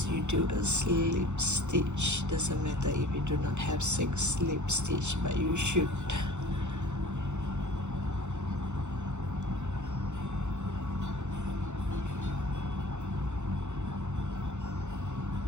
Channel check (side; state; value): left; late; 0.83 ms